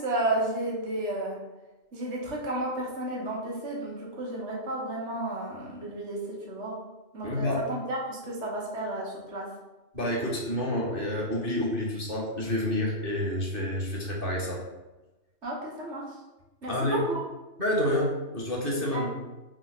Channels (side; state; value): left; late; 2.6 ms